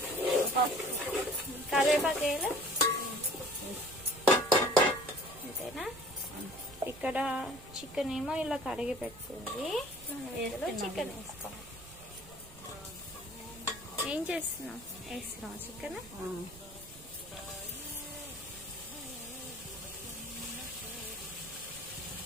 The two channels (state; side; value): noise; right; rumble, 19 dB below the sound